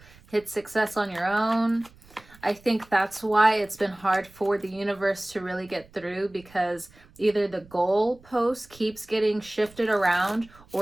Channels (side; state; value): right; noise; rumble, 26 dB below the sound